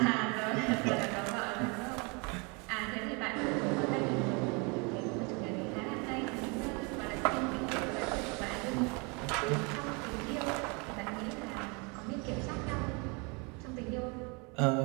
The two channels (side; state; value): left; quieter; 31.3 dB